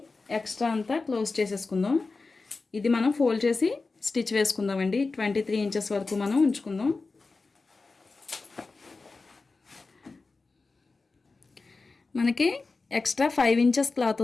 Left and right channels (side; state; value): right; quieter; 3.9 dB